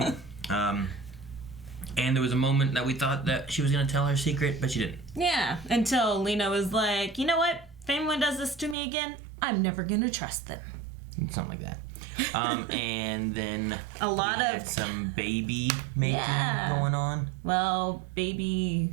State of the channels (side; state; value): left; drops out; at 8.8 s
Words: No. And there was a moment that we thought that she was going to tell her secret, but she didn't. Yeah, until Lena was like, you know what? If anyone does this to me again, I'm never going to trust them. Something like that. And then a lot we of had some baby making going on. Well, baby